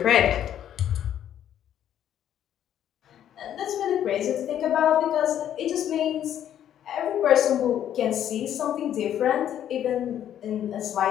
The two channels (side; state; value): right; quieter; 10.5 dB